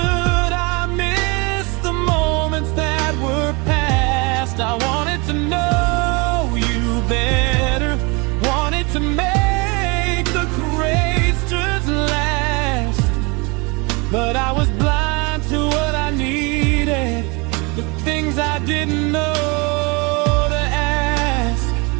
missed the moments that were past. I wanted to know you better, wanted to make the questions last, but I was blind to what I needed, the things I didn't know to ask.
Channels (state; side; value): quieter; left; 28.5 dB